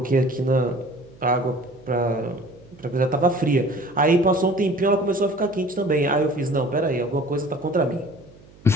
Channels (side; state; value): right; noise; hum, 25 dB below the sound